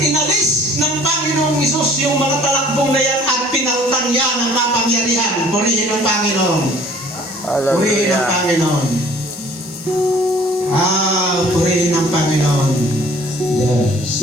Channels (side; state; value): both; normal; correlation 0.53